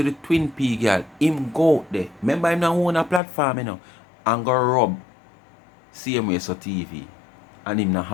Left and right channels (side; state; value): right; drops out; at 3.2 s